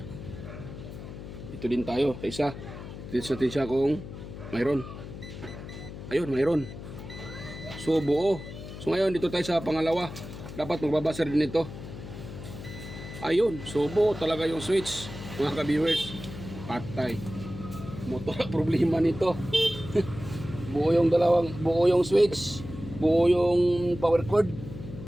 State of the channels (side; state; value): left; noise; hum, 11 dB below the sound